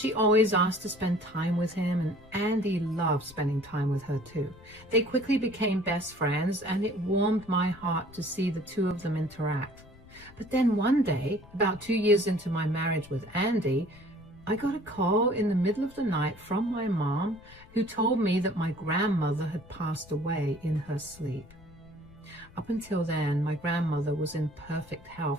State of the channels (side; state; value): left; noise; rumble, 23 dB below the sound